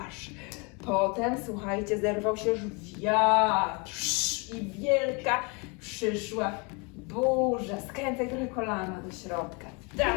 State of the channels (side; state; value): right; quieter; 31.0 dB